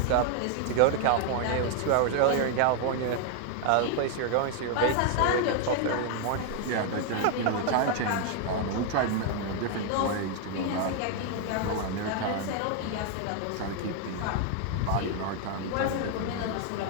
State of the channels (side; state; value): both; different; correlation 0.00